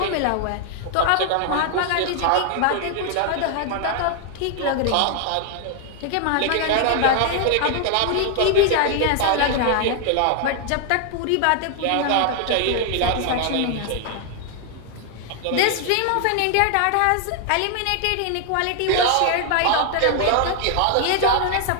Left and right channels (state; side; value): different; both; correlation 0.00